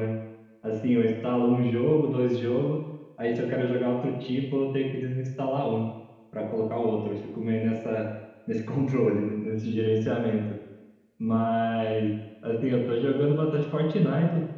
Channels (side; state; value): both; identical; correlation 1.00